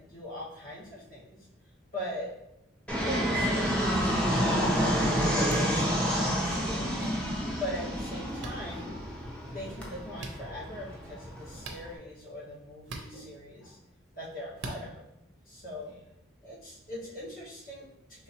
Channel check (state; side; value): normal; both; correlation 0.56